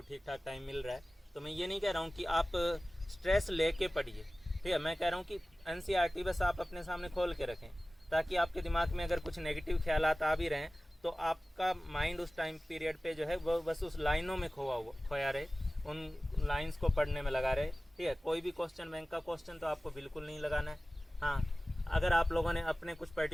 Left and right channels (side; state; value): both; normal; correlation 0.97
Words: ठीक ठाक टाइम मिल रहा है। तो मैं ये नहीं कह रहा हूँ कि आप स्ट्रेस लेके पढ़िए, ठीक है, मैं कह रहा हूँ कि एनसीईआरटी बस आप अपने सामने खोल के रखें, ताकि आपके दिमाग में अगर कुछ नेगेटिव ख्यालात आ भी रहें तो आपका माइंड उस टाइम पीरियड पे जो है वो बस उस लाइनों में खोया रहे, उन लाइन्स को पढ़ने में लगा रहे। ठीक है, कोई भी क्वेश्चन बैंक का क्वेश्चन तो आपको बिल्कुल नहीं लगाना है। हाँ, अगर आप लोगों ने अपने कुछ